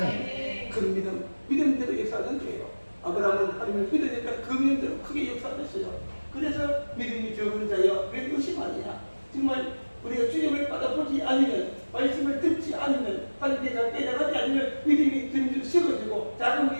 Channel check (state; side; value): inverted; both; correlation -1.00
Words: 큰 믿음대로 역사하는 거예요. 아브라함은 하나님을 믿으니까 그 믿음대로 크게 역사했어요. 그래서 믿음이 적은 자여 왜 의심하느냐? 정말 우리가 주님을 받아보지 않으면 말씀을 듣지 않으면 하나님께 잘 깨달지 않으면 믿음이 점점 식어지고 작은